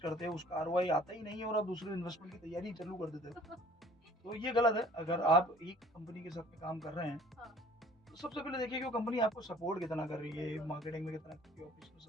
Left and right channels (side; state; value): both; normal; correlation 0.52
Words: करते हो, उसका आरओआई आता ही नहीं है और आप दूसरे इन्वेस्टमेंट की तैयारी चालू कर देते हो। तो ये गलत है। अगर हाँ, आप एक कंपनी के साथ में काम कर रहे हैं, हाँ, तो सबसे पहले देखिए कि वो कंपनी आपको सपोर्ट कितना कर रही है, बिल्कुल, मार्केटिंग में कितना कर रही है, ऑपरेशन में